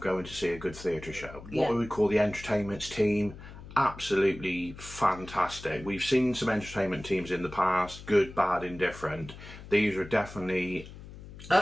going to see a good theatre show. What we would call the entertainments team, absolutely fantastic. We've seen some entertainment teams in the past, good, bad, indifferent. These are definitely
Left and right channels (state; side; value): noise; left; hum, 15 dB below the sound